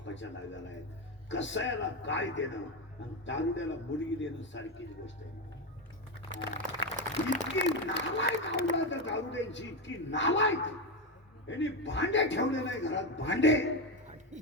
दाव्यावर आहेत. कसायाला काय देणं आणि दारुड्याला मुलगी देणं सारखीच गोष्ट आहे. इतकी नालायक आवडा तर दारुड्यांची, इतकी नालायक. यांनी भांडे ठेवले नाही घरात, भांडे.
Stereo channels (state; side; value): normal; both; correlation 0.12